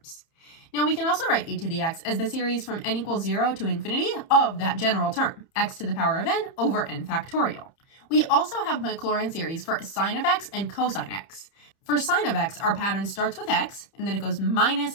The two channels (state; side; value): late; right; 30 ms